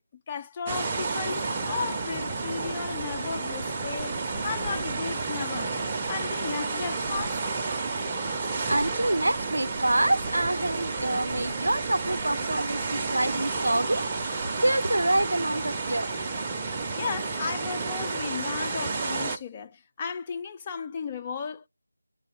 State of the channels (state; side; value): inverted; both; correlation -0.88